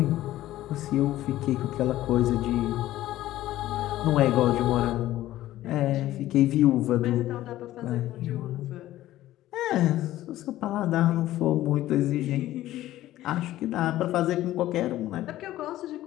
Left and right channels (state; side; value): quieter; right; 14.7 dB